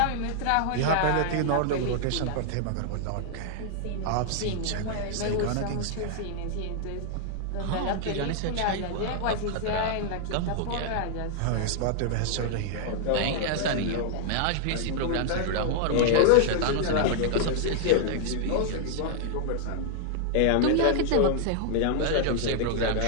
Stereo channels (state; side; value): different; both; correlation -0.01